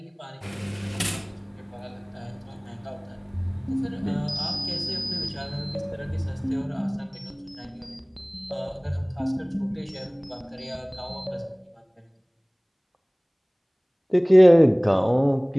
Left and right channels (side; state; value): both; identical; correlation 1.00